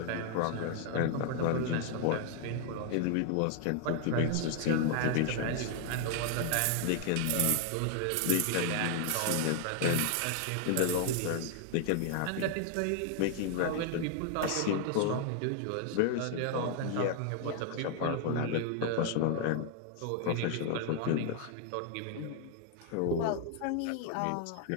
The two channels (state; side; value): different; both; correlation 0.00